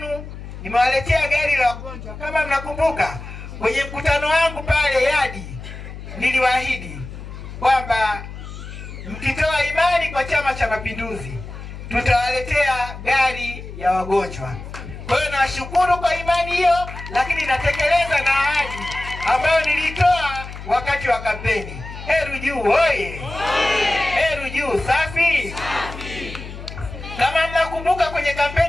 nimewaletea gari la wagonjwa. Kama mnakumbuka kwenye mkutano wangu pale Yadi, niliwaahidi kwamba mkitoa imani kwa Chama cha Mapinduzi tutawaletea gari ya wagonjwa. Kwa hiyo nawashukuru kwa imani hiyo, lakini natekeleza na ahadi ambayo nilitoa wakati wa kampeni. Heru Juu oye! Heru Juu safi! Kama mnakumbuka kwenye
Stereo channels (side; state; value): left; noise; hum, 12 dB below the sound